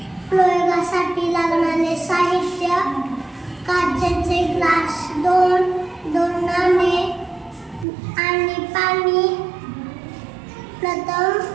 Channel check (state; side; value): drops out; left; at 7.9 s